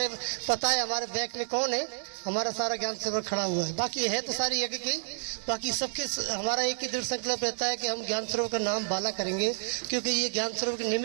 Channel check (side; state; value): left; silent; digital silence